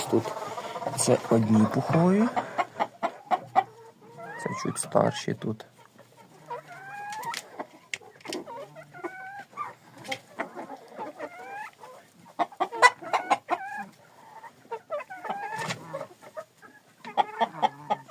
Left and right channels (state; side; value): identical; both; correlation 1.00